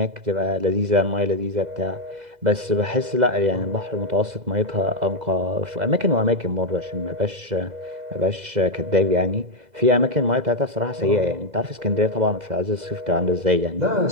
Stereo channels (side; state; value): left; late; 2.0 ms